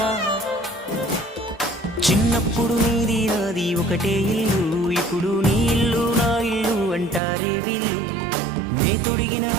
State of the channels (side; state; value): left; drops out; at 7.2 s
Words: చిన్నప్పుడు నీది నాది ఒకటే ఇల్లు ఇప్పుడు నీ ఇల్లు నా ఇల్లు అంటారే వీళ్ళు నే తొడిగిన